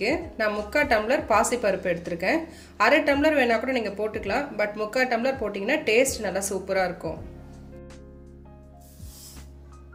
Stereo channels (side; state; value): both; identical; correlation 1.00